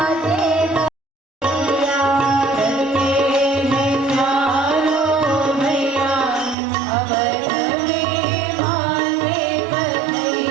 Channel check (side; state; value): left; drops out; at 6.6 s